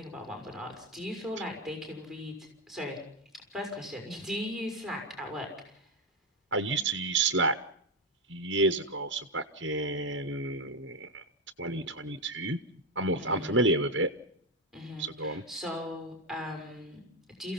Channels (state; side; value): normal; both; correlation 0.08